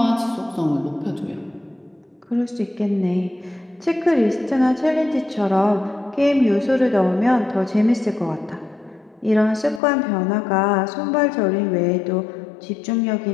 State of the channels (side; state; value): right; drops out; at 9.8 s